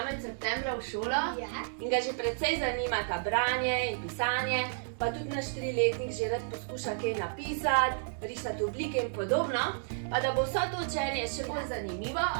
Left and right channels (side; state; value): left; silent; digital silence